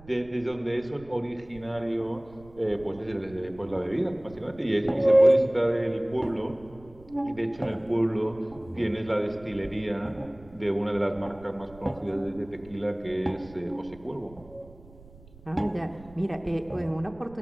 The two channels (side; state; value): right; noise; rumble, 22 dB below the sound